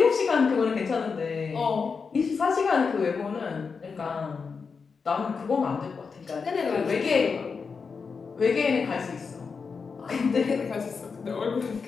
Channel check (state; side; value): quieter; right; 5.3 dB